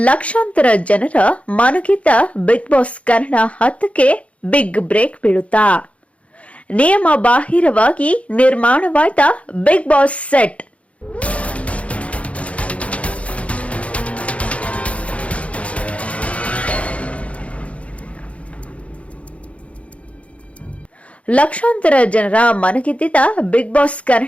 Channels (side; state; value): right; late; 0.063 ms